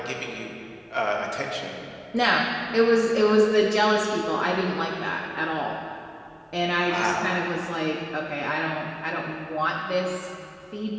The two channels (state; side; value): identical; both; correlation 1.00